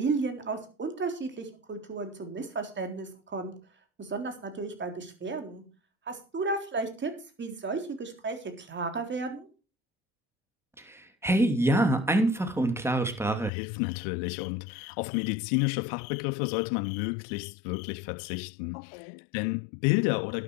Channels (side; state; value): right; drops out; at 13.5 s